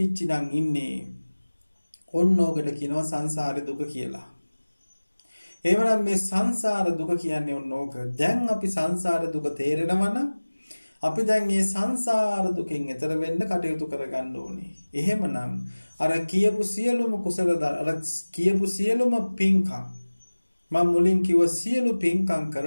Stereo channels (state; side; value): inverted; both; correlation -1.00